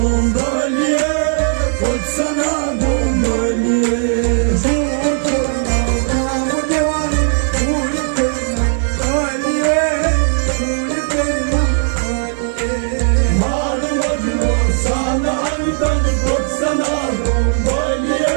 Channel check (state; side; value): silent; left; 69 dB below the other